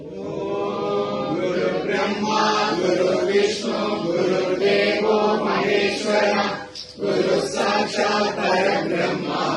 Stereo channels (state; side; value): identical; both; correlation 1.00